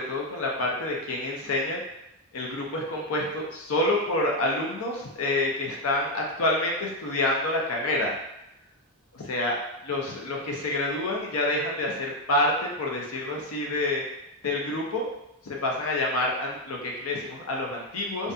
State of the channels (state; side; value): normal; both; correlation 0.04